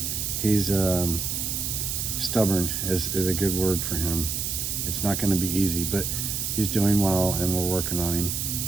stubborn is a good word for him. It's not going to be easy, but he's doing well, and we're working on him.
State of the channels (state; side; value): noise; right; hiss, 2 dB below the sound